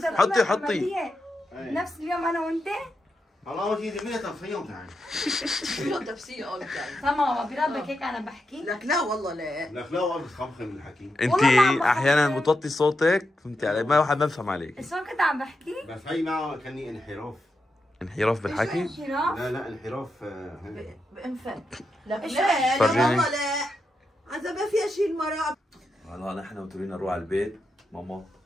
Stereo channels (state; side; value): normal; both; correlation 0.86